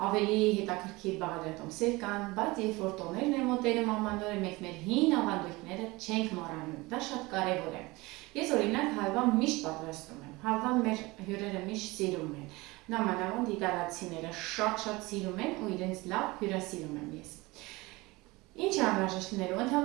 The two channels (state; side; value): quieter; left; 22.4 dB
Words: ավելի հետաքրքիր բաղադրատոմսեր կան, բայց երբ որ տոներն են մոտենում ամանորը, մենք մեր հին ավանդույթները չենք մոռանում, դա շատ կարևոր է։ Ես օրինակ հալվա միշտ պատրաստում եմ, հալվան մեր հյուրերը միշտ սիրում են, նամանավանդ իտալացիները շատ սիրում են ու իրենց լավ հյուրասիրում եմ ես։ Ինչ է անհրաժեշտ լինելու,